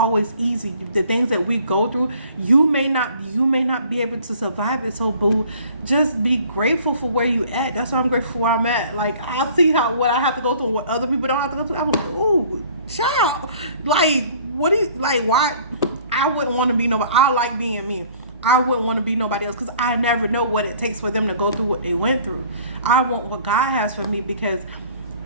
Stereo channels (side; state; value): both; inverted; correlation -0.52